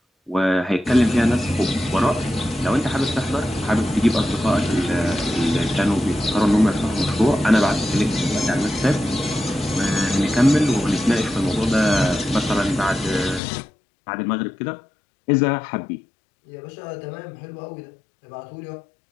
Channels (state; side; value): drops out; right; at 13.4 s